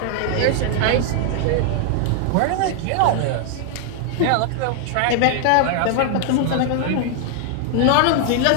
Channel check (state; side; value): different; both; correlation 0.00